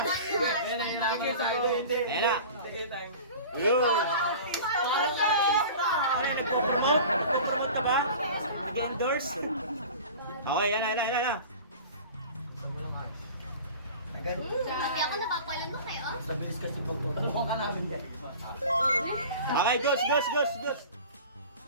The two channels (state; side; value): inverted; both; correlation -0.39